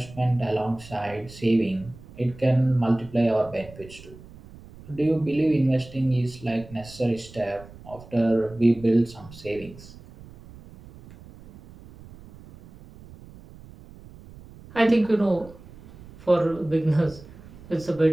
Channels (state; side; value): noise; right; rumble, 20 dB below the sound